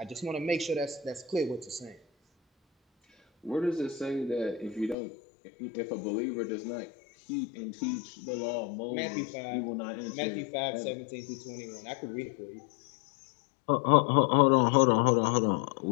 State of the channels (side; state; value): right; drops out; at 5.0 s